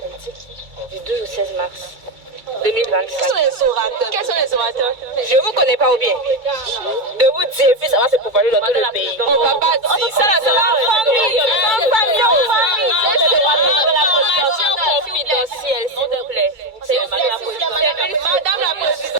du 12 au 16 mars 2025. Quels sont les orateurs? Je vous connais pas ou bien? De vous dire, puis ça va se propager dans tout le pays. On va pas dire ça, là, ça va. Famille. Confidentielle, s'il vous plaît. C'est madame la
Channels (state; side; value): late; left; 2.3 ms